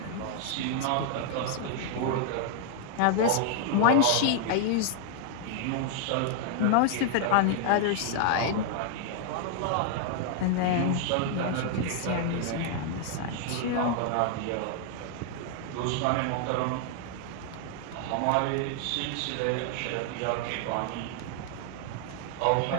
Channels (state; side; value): different; both; correlation 0.00